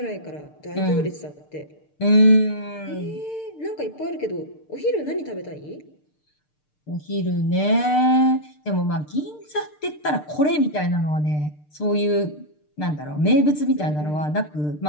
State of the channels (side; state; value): right; late; 6.7 ms